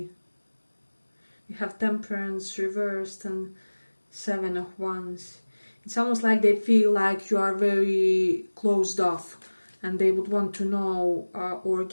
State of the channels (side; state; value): both; inverted; correlation -1.00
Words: We have Temperance reversed and 7 of Wands. It's almost like they feel like you are very closed off, and they would want to know or